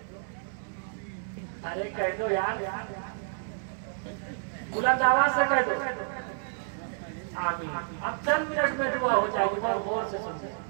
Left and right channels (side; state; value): left; silent; 58 dB below the other